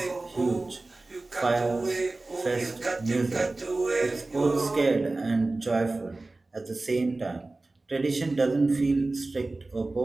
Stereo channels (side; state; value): left; quieter; 3.2 dB